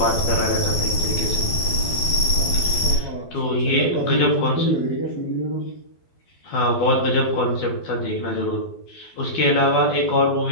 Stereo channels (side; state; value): right; late; 12 ms